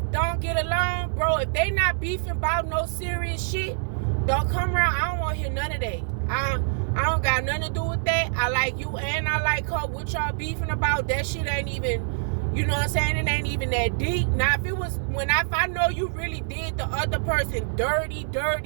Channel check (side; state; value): left; silent; 61 dB below the other